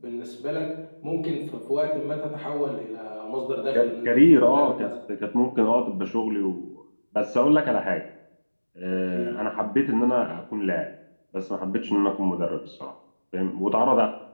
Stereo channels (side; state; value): both; inverted; correlation -1.00